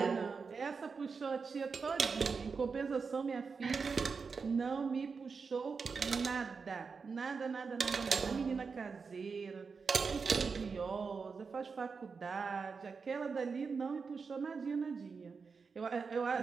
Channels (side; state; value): left; quieter; 5.1 dB